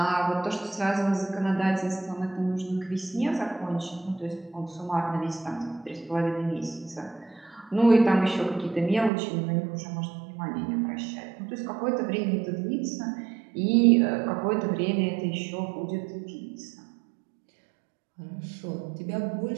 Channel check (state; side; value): drops out; left; at 9.1 s